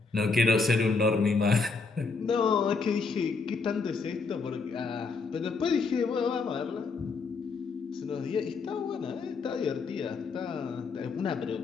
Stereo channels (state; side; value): quieter; right; 4.4 dB